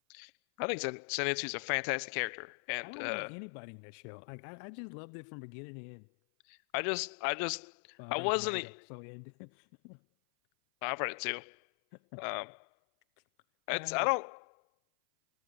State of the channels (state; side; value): silent; right; 52 dB below the other